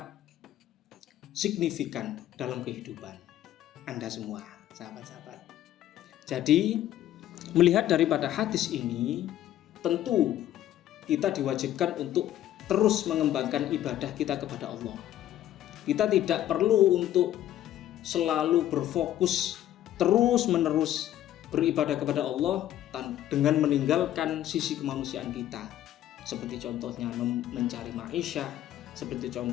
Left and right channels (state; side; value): quieter; right; 12.5 dB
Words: signifikan dalam kehidupan Anda semua, sahabat-sahabat. Jadi, melihat daripada hadis ini, tentu kita diwajibkan untuk terus mengembangkan ibadah kita kepada Allah. Kita tidak perlu untuk selalu berfokus terus-menerus beribadah kepada Allah dengan meninggalkan sisi kemanusiaan kita, seperti contohnya mencari ma'isyah, seperti